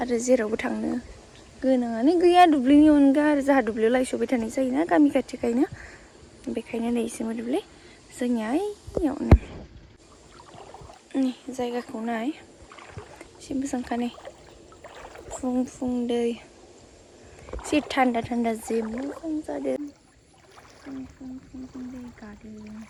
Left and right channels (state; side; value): identical; both; correlation 1.00